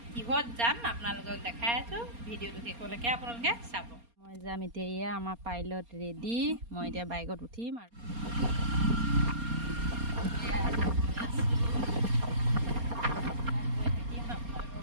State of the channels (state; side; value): late; left; 4.3 ms